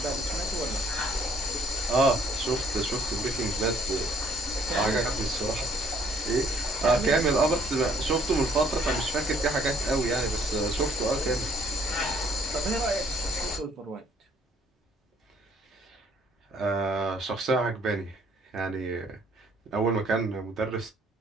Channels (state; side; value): normal; both; correlation 0.62